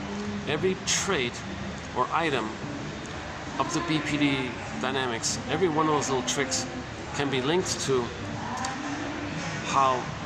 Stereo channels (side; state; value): both; identical; correlation 1.00